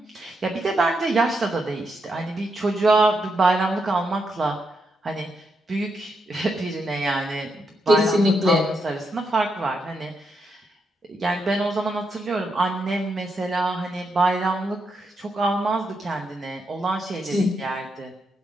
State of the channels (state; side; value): normal; both; correlation 0.82